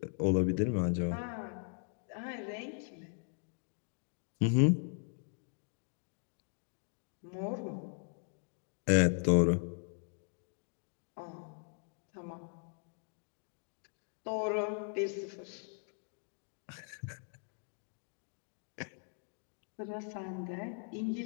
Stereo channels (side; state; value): right; silent; 52 dB below the other